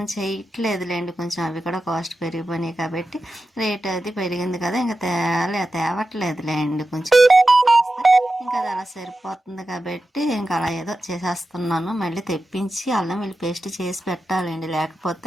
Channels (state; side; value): normal; both; correlation 0.92